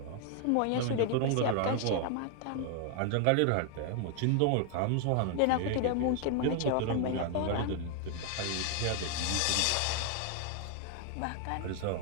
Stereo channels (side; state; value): both; different; correlation 0.00